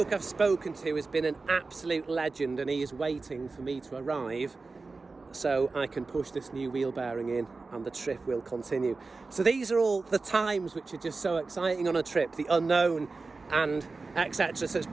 I've spoken to has been an absolute legend, and he is waiting for me to arrive so I can push this new wheel bearing in and the trip will continue. So these are all the times which are just so exciting on a trip, the unknown and etc. So it's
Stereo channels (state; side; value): quieter; left; 3.9 dB